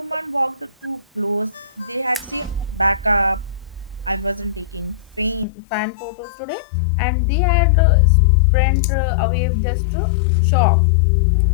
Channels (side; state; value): right; drops out; at 5.5 s